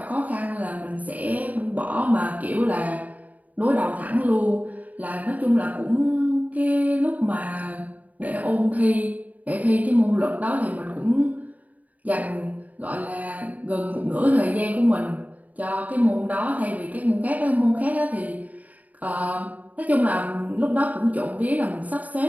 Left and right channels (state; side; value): late; left; 0.075 ms